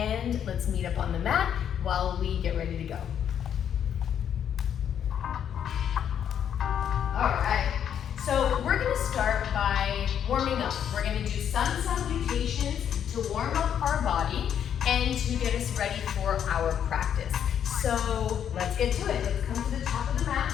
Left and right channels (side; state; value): right; quieter; 9.0 dB